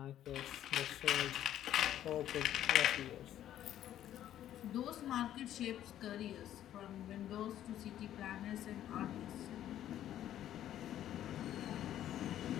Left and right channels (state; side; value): quieter; right; 11.7 dB